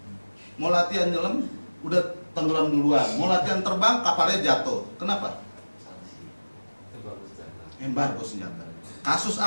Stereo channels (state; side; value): inverted; both; correlation -1.00